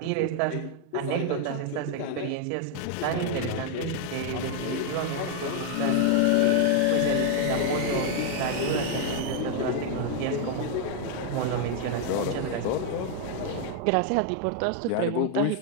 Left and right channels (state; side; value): different; both; correlation 0.00